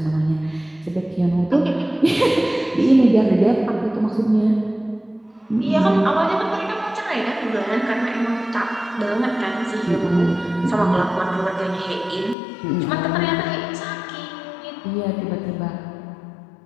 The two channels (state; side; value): drops out; right; at 12.4 s